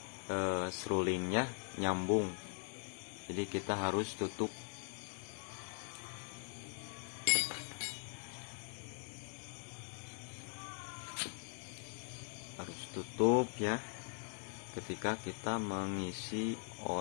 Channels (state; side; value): silent; right; 50 dB below the other